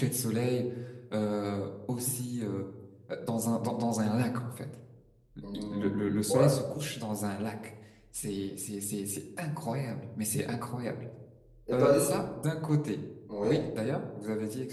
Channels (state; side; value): identical; both; correlation 1.00